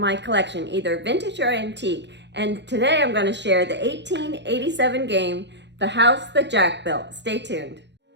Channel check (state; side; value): late; left; 0.51 ms